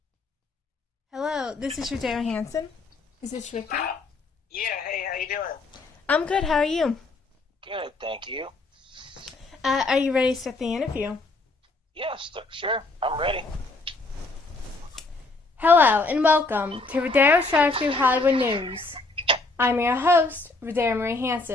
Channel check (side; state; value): right; quieter; 3.4 dB